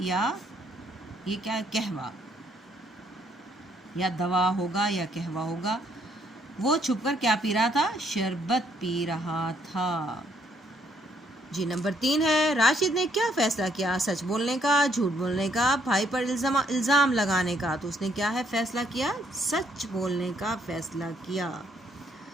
ये क्या, कहवा, या दवा होगा या कहवा होगा। वो छुपकर क्या पी रहा था? शरबत पी रहा था। जी नंबर 3 है, राशिद ने क्या फैसला किया? सच बोलने का, झूठ बोलने का, भाई पर इल्ज़ाम लगाने का। तो उसने क्या है फैसला किया? सच बोलने का फैसला किया।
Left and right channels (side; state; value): both; normal; correlation 0.69